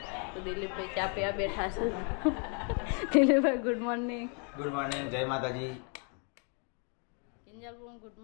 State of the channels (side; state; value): right; quieter; 39.6 dB